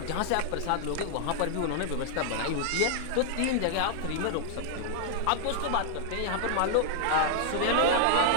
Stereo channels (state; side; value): different; both; correlation -0.01